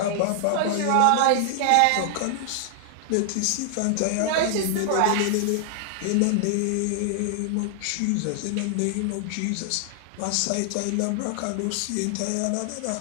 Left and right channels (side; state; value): both; different; correlation 0.00